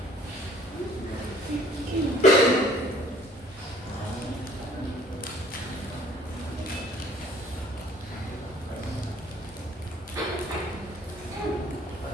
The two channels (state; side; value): normal; both; correlation 0.56